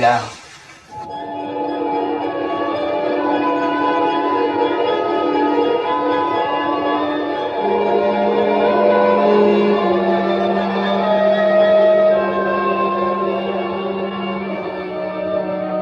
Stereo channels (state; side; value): identical; both; correlation 1.00